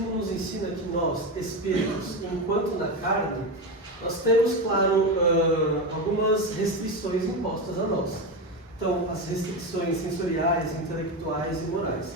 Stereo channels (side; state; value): both; normal; correlation 0.16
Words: nos ensina que nós, espíritos, enquanto na carne, nós temos, claro, algumas restrições impostas a nós. Então, as restrições sensoriais, intelectuais e morais.